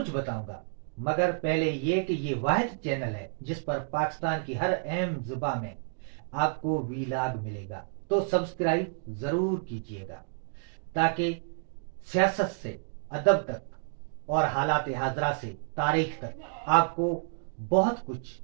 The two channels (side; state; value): left; silent; digital silence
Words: बताऊंगा, मगर पहले ये कि ये वाहिद चैनल है जिस पर पाकिस्तान की हर अहम जुबा में आपको वीलाग मिलेगा। तो सब्सक्राइब ज़रूर कीजिएगा ताकि सियासत से अदब तक और हालात हाजरा से तारीख तक आपको बहुत कुछ